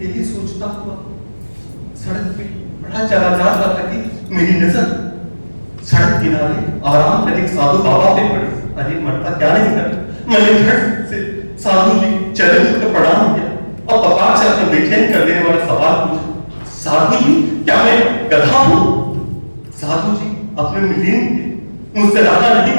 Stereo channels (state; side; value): inverted; both; correlation -1.00